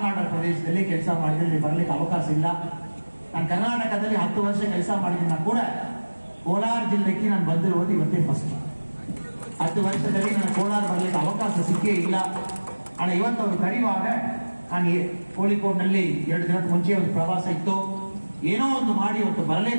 ಆರ್ಡರ್ ಪ್ರದೇಶದಲ್ಲಿ ಕೆಲಸ ಮಾಡಿದ್ರೆ ಬರಲಿಕ್ಕೆ ಅವಕಾಶ ಇಲ್ಲ. ನಾನು ಕರ್ನಾಟಕದಲ್ಲಿ 10 ವರ್ಷ ಕೆಲಸ ಮಾಡಿದ ಕೂಡ ಕೋಲಾರ ಜಿಲ್ಲೆಗೆ ನಾನು ಬಂದಿರುವುದು ಇವತ್ತೇ ಫಸ್ಟ್. 10 ವರ್ಷದಲ್ಲಿ ನಾನು ಕೋಲಾರ ಬರಲಿಕ್ಕೆ ಅವಕಾಶ ಸಿಕ್ಕೇ ಇಲ್ಲ. ಆದ್ರೆ ಇವತ್ತು ಅವರು ಕರೆಯುವಾಗ ನಾನು ಕೋಳಿಕೋಡ್ನಲ್ಲಿ 2 ದಿನದ ಮುಂಚೆ ಒಂದು ಪ್ರವಾಸ ಇತ್ತು, ಏನೋ ಒಂದು ಮಾಡಿ ಇವತ್ತು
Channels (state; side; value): inverted; both; correlation -1.00